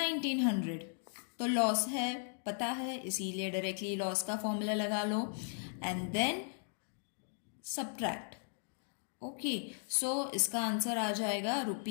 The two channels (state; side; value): silent; right; digital silence